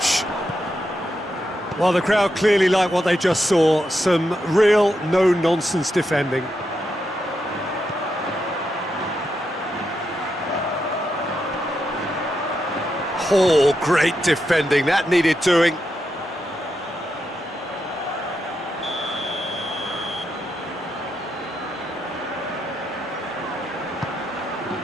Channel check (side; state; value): both; normal; correlation 0.84